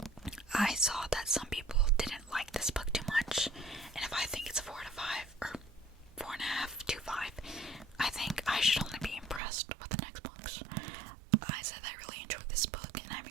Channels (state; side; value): drops out; left; at 9.4 s